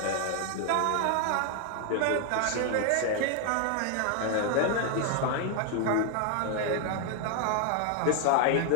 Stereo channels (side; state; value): both; different; correlation 0.00